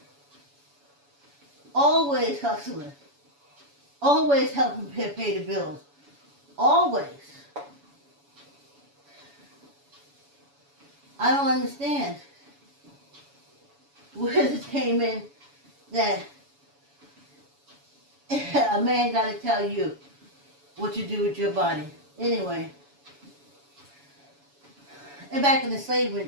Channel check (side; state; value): left; late; 7.1 ms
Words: Always hustling. Always helping pay the bills. Always. I don't understand where this came in that a man got to tell you what you do with your body. Anyway. And back in the slavery